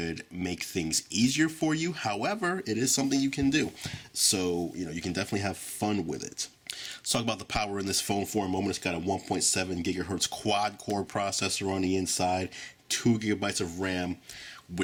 make things easier for you. However, it is something you can do. So, you can definitely have fun with it. Let's talk about the power in this phone for a moment. It's got a 1.7 gigahertz quad-core processor on the inside, 2 gigabytes of RAM,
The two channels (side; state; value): both; identical; correlation 1.00